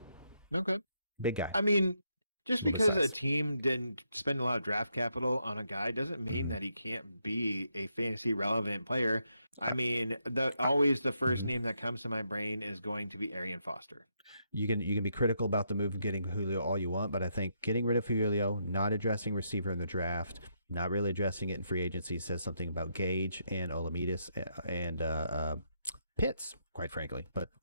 Okay. big guy. I mean, just Middle because a size. team didn't spend a lot of draft capital on a guy doesn't mean that he can't be a fantasy relevant player. I mean, always the first Mhm. name that comes to my brain is going to be Arian Foster. You can be critical about the move of getting Julio all you want, but I think getting rid of Julio, not addressing receiver in the draft, not really addressing it in free agency says something about Gage and Olamides and Pitts, quite frankly. But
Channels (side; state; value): both; inverted; correlation -0.78